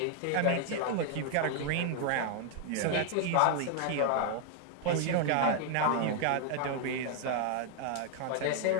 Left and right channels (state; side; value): different; both; correlation 0.00